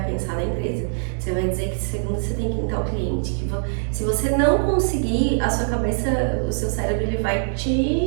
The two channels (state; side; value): silent; left; digital silence